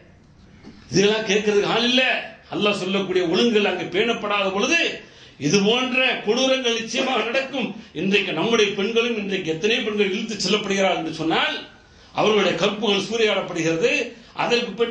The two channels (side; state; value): both; identical; correlation 1.00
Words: இதெல்லாம் கேட்கறதுக்கு ஆள் இல்ல. அல்லாஹ் சொல்லக்கூடிய ஒழுங்குகள் அங்கு பேணப்படாத பொழுது இது போன்ற கொடூரங்கள் நிச்சயமாக நடக்கும். இன்றைக்கு நம்முடைய பெண்களும் இன்றைக்கு எத்தனை பெண்கள் இழுத்து செல்லப்படுகிறார்கள் என்று சொன்னால் அவர்களுடைய கற்புகள் சூறையாடப்படுகிறது. அதற்கு